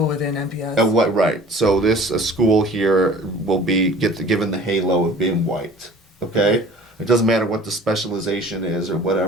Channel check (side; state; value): both; normal; correlation 0.47